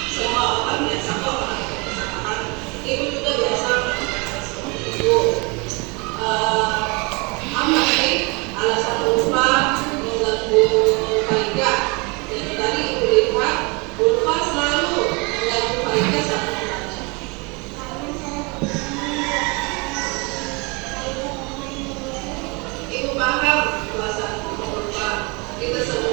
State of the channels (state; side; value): quieter; left; 29.2 dB